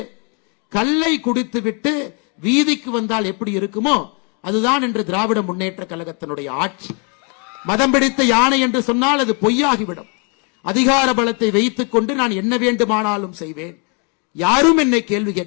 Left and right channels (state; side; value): quieter; right; 36.5 dB